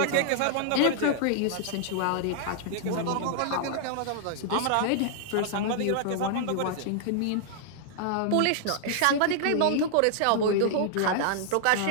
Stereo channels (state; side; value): different; both; correlation -0.01